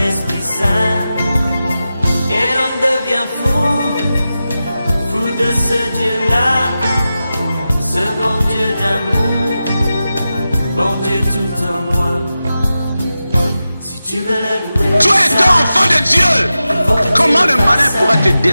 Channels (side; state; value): both; inverted; correlation -0.92